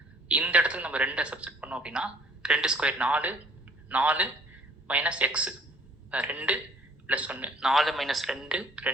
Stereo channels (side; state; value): both; normal; correlation 0.55